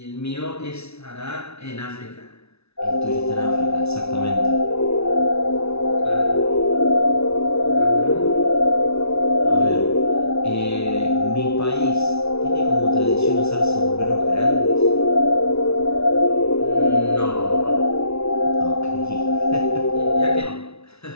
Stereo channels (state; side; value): late; right; 0.80 ms